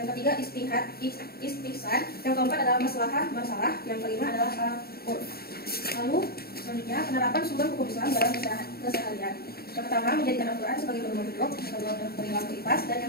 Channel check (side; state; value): right; late; 0.45 ms